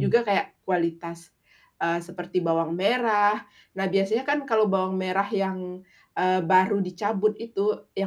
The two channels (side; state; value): both; identical; correlation 1.00